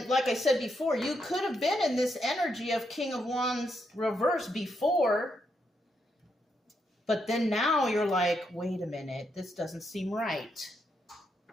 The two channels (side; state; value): both; normal; correlation 0.80